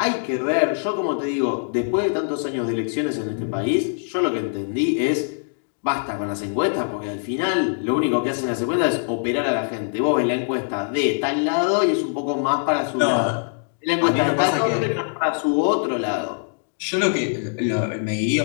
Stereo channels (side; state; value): right; silent; digital silence